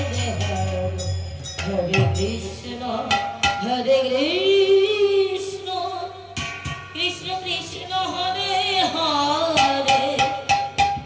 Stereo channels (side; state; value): both; identical; correlation 1.00